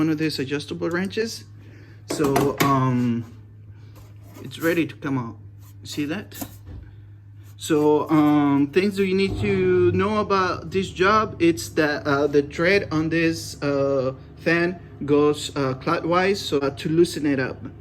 of these adjustable wrenches. So it's ready to come out. See that? So things that you need to know about this job, it's that the thread on this fan goes clockwise, so to loosen it up.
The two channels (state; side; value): identical; both; correlation 1.00